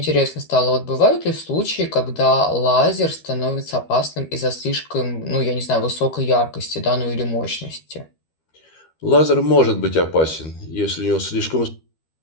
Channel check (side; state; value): right; late; 13 ms